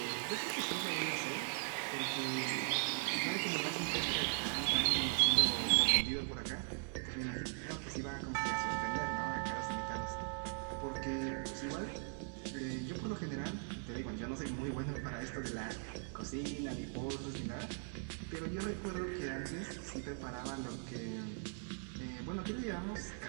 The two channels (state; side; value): silent; left; 51 dB below the other